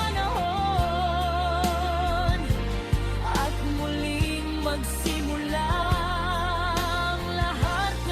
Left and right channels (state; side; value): identical; both; correlation 1.00